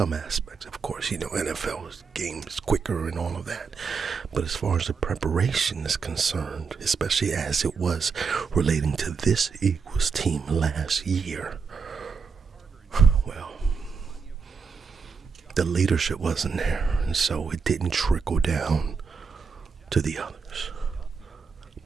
aspects, of course, NFL game is quicker and all of that. But as far as the preparation is concerned, especially as it was relating to this Eagles team last year, well, the leadership wasn't there, and so it didn't trickle down to the others.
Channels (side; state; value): left; quieter; 5.4 dB